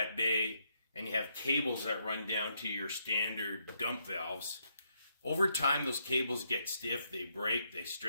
bay and you have cables that run down to your standard dump valves, over time those cables get stiff, they break, they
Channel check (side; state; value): both; inverted; correlation -0.77